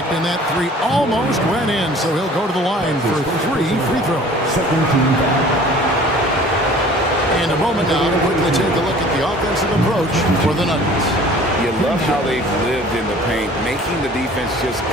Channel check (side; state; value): both; normal; correlation 0.48